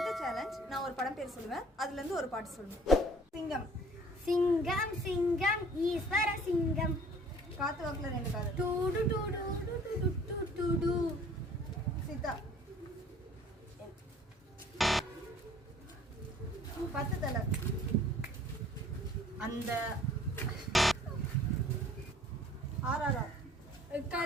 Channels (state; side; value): normal; both; correlation 0.53